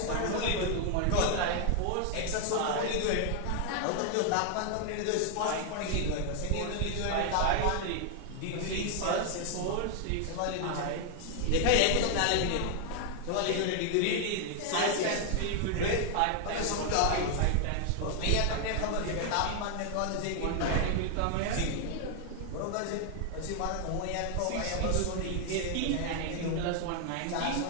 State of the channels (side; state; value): both; different; correlation 0.00